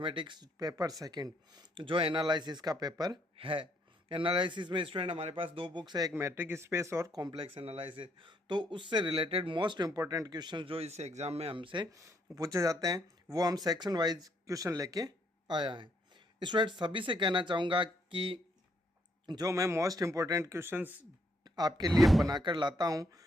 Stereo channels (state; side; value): normal; both; correlation 0.72